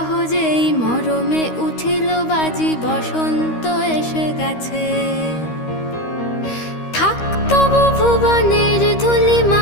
মরমে উঠিল বাজি, বসন্ত এসে গেছে। থাক তবু ভুবনের ধুলি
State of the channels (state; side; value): late; right; 13 ms